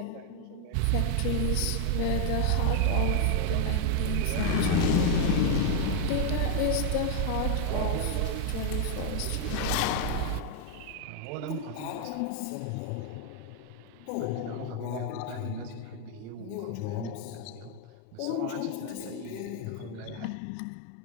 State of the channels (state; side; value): different; both; correlation 0.01